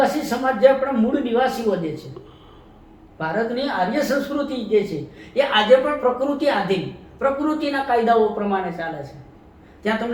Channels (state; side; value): identical; both; correlation 1.00